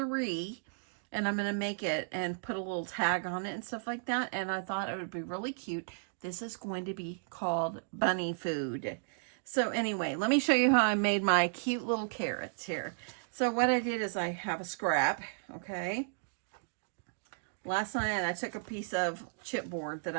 and I'm going to make it and put a little tag on it and stuff like that. And I thought it would be really cute. This is going to be called bunny food. So anyway, let me show you how I made my cute little carrots here. So what I did is I have a scrap, okay? Last night I took a piece of chipboard that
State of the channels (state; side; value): silent; left; digital silence